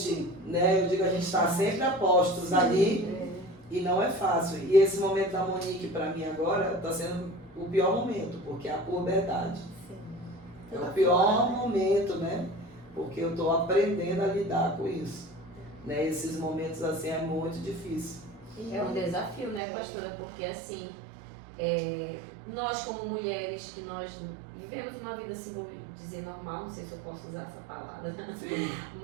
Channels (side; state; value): left; drops out; at 19.6 s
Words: né? Eu digo, a gente está sempre a postos ali e não é fácil. E esse momento da Monique para mim agora está sendo o pior momento, porque é a puberdade. É o pior momento, né? Porque eu estou aprendendo a lidar com isso. Né? Esses momentos assim é muito difícil. É um desafio, né, pastora? Porque assim, nós como mulheres que nós vivemos uma vida, assim, vou dizer normal, não sei se eu posso usar essa palavra, Sim.